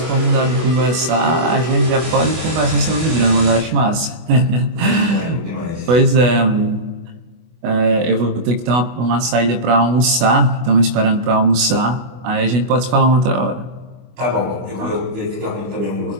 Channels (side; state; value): left; late; 24 ms